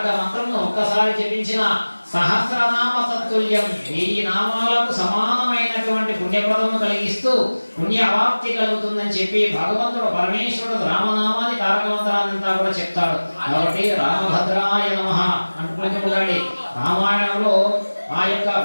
మంత్రంను ఒక్కసారి జపించిన సహస్రనామ తత్తుల్యం 1000 నామాలకు సమానమైనటువంటి పుణ్యప్రదము కలిగిస్తూ పుణ్య అవాప్తి కలుగుతుందని చెప్పి భగవంతుడు పరమేశ్వరుడు రామనామాన్ని తారక మంత్రాన్నంతా కూడా చెప్తాడు. కాబట్టి రామభద్రాయ నమః అంటున్నాడు. రామాయణంలో ఆ యొక్క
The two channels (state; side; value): inverted; both; correlation -1.00